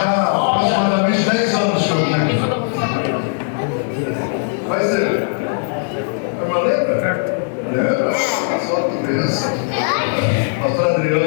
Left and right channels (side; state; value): right; silent; 64 dB below the other